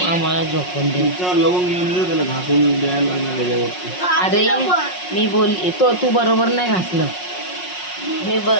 आम्हाला झोपून दे. अरे मी बोलली तू बरोबर नाही घासलं. मी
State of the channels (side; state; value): right; late; 5.5 ms